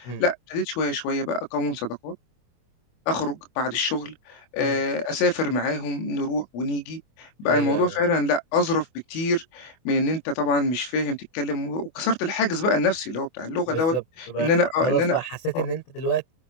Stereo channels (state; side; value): late; right; 24 ms